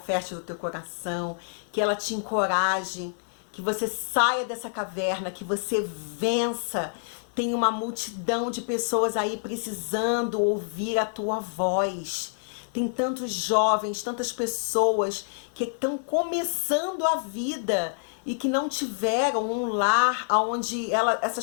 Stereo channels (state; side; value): silent; right; 60 dB below the other